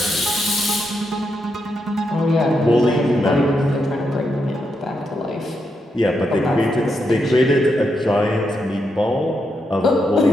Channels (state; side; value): normal; both; correlation 0.82